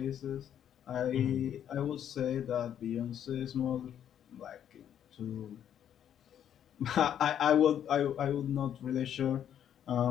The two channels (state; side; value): quieter; right; 9.7 dB